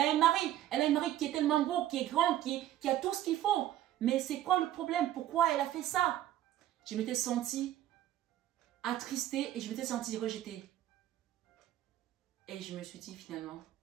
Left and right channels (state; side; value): quieter; left; 12.9 dB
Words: un mari. Elle a un mari qui est tellement beau, qui est grand, qui a tout ce qu'il faut. Mais c'est quoi le problème? Pourquoi elle a fait ça? Je m'étais sentie attristée et je m'étais sentie rejetée. Et je me suis dit finalement,